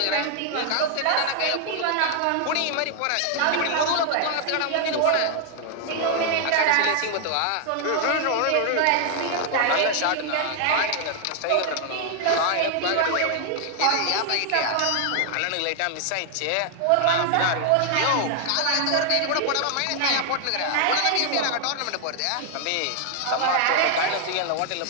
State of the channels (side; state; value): both; different; correlation 0.00